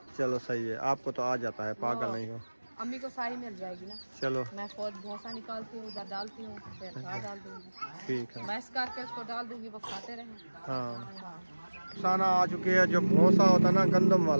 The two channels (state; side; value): inverted; both; correlation -1.00